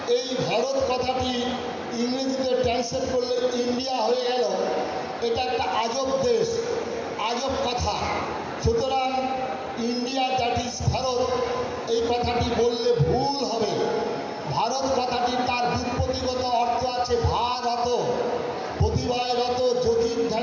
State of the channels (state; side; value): identical; both; correlation 1.00